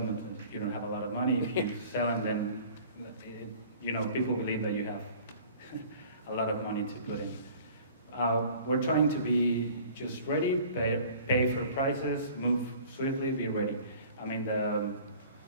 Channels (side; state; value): both; inverted; correlation -0.48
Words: you don't have a lot of money. If you sell them, then people believe that you have a lot of money to put in. We're trying to be just ready, pay for prices, move swiftly, be ready. I mean,